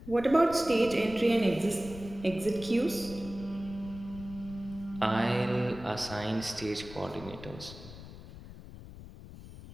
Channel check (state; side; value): noise; left; rumble, 15 dB below the sound